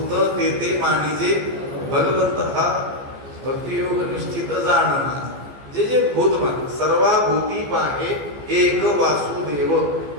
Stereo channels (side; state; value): left; late; 14 ms